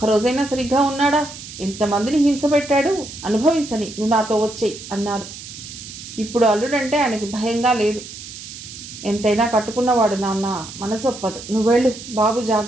సరిగ్గా ఉన్నాడా? ఎంతమందిని హింస పెట్టాడు? అనుభవించని, నువ్వు నాతో వచ్చేయి అన్నారు. ఇప్పుడు అల్లుడంటే ఆయనకి భయంగా లేదు. ఎంతైనా కట్టుకున్నవాడు నాన్న, మనసొప్పదు. నువ్వెళ్ళు బాబు,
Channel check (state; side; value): noise; right; hiss, 13 dB below the sound